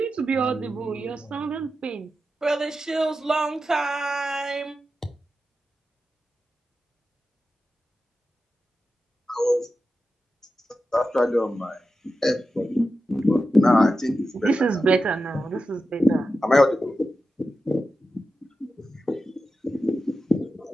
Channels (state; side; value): normal; both; correlation 0.91